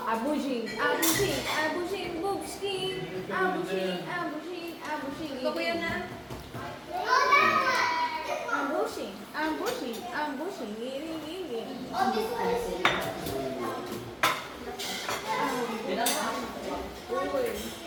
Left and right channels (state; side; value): identical; both; correlation 1.00